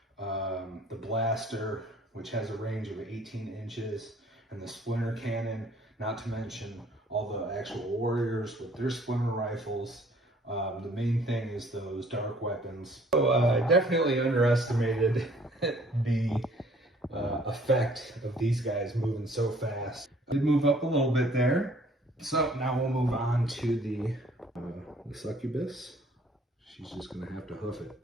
the Blaster, which has a range of 18 inches, and the Splinter Cannon, not to mention all the actual warriors with their splinter rifles. The main thing is those dark weapons. So I definitely underestimated the effect of these guys moving so fast. I did move up a little bit there. So now we'll move on to the Succubus. She's just gonna have to hoof it,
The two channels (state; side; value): normal; both; correlation 0.57